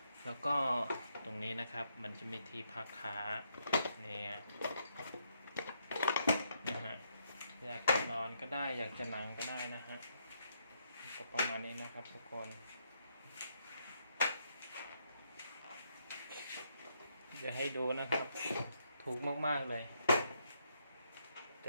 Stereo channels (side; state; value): both; inverted; correlation -0.76